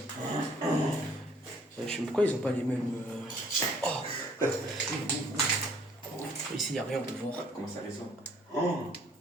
Je sais pas pourquoi ils ont pas les mêmes. Oh! Ici, il n'y a rien, on peut voir. Comment ça résonne? Oh.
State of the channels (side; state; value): both; normal; correlation 0.60